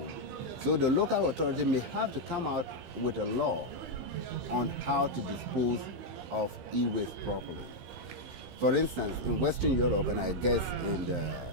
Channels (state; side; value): late; left; 15 ms